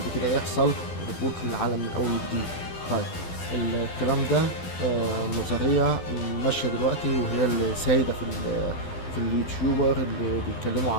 كده يحصل ريبوت للعالم من اول وجديد. طيب، الكلام ده نظرية ماشية دلوقتي وهي اللي سايدة في اليوتيوبر اللي بيتكلموا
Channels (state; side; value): late; right; 12 ms